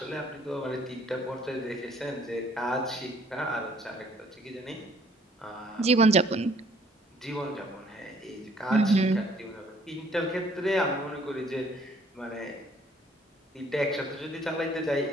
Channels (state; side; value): normal; both; correlation 0.60